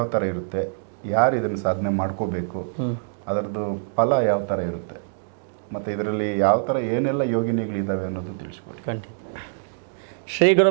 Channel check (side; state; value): left; silent; digital silence